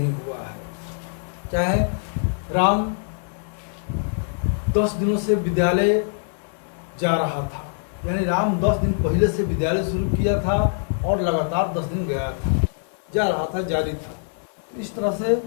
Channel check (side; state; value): right; silent; 56 dB below the other